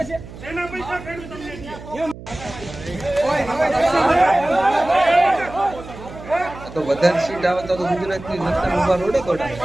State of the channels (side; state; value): right; noise; hum, 15 dB below the sound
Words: તો વધારે સીટ આવે તો ગુજરાતની જનતા ઉભા રોડે દોડાય.